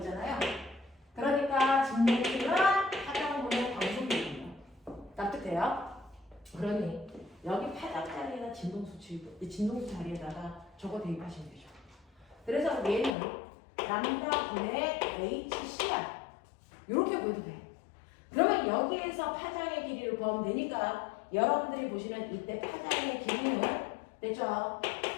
그러니까 진동수는 파장분의 광속입니다. 납득돼요? 그러니 여기 파장 자리에다 진동수 자리에다가 저거 대입하시면 되죠. 그래서 얘는 람다분의 HC야. 이렇게 보여도 돼. 그러면 여기에서 파장의 길이를 구하면 되니까 여러분들이 보시는 이때 파장의 길이는 됐죠?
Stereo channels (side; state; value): right; drops out; at 13.1 s